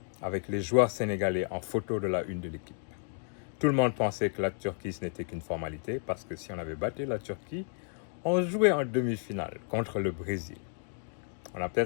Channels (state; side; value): silent; right; 56 dB below the other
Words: avec les joueurs sénégalais en photo de la une de l'équipe. Tout le monde pensait que la Turquie, ce n'était qu'une formalité, parce que si on avait battu la Turquie, on jouait en demi-finale contre le Brésil. On a